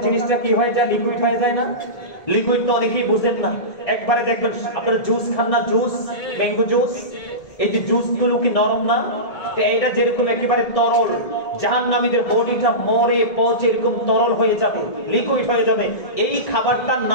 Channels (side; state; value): right; late; 1.7 ms